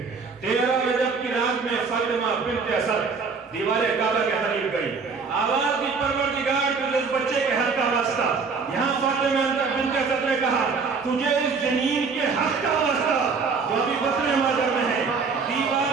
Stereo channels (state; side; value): quieter; left; 5.0 dB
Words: 13 رجب کی رات میں فاطمہ بنت اسد دیوار کعبہ کے قریب گئی، آواز دی پروردگار تجھے اس بچے کے حق کا واسطہ۔ یہاں فاطمہ بنت اسد نے کہا تجھے اس جنین کے حق کا واسطہ جو ابھی بطن مادر میں ہے۔